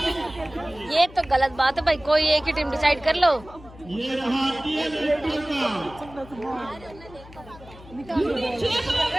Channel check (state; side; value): noise; left; hum, 19 dB below the sound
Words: ये तो गलत बात है भाई, कोई एक ही टीम डिसाइड कर लो। ये रहा टीएल का।